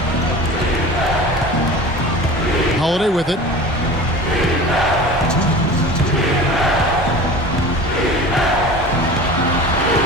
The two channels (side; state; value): both; normal; correlation 0.37